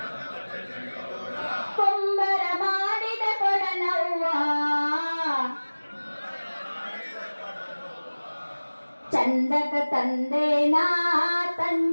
ಕುಂಬರ ಮಾಡಿದ ಕೊಡನವ್ವ ಚಂದಕ ತಂದೇನಾ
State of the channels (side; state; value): both; inverted; correlation -1.00